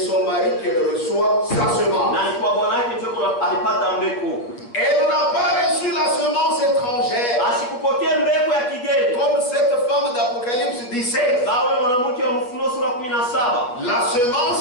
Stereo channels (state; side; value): late; right; 8.2 ms